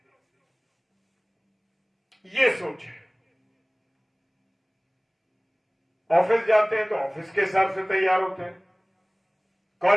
ये सोच है। ऑफिस जाते हैं तो ऑफिस के हिसाब से तैयार होते हैं,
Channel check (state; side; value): identical; both; correlation 1.00